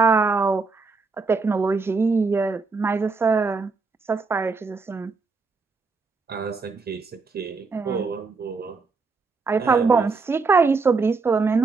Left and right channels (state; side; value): quieter; left; 4.4 dB